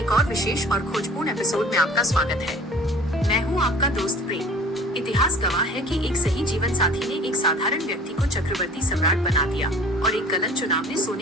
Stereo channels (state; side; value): normal; both; correlation 0.46